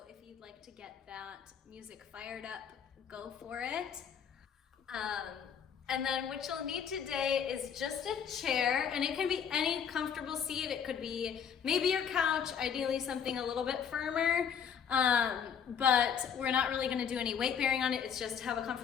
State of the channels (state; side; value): quieter; right; 7.7 dB